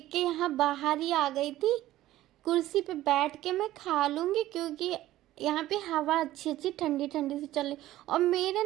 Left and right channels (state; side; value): quieter; left; 15.0 dB